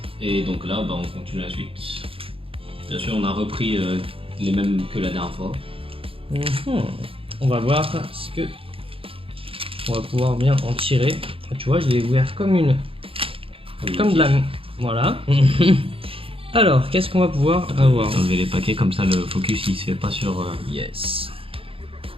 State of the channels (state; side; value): late; left; 0.27 ms